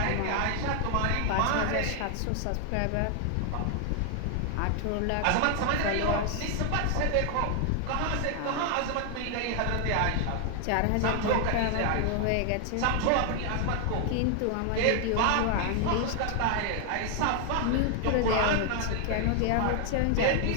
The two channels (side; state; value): both; different; correlation 0.00